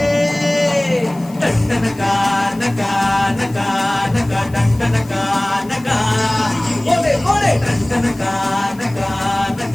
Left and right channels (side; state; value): left; noise; hiss, 24 dB below the sound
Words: டண்டனகா நகா நகா நகா டண்டனகா நகா ஓலே ஓலே டண்டனகா நகா